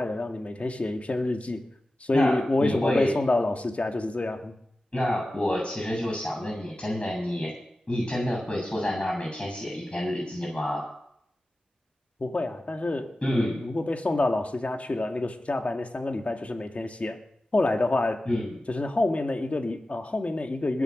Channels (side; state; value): both; normal; correlation 0.94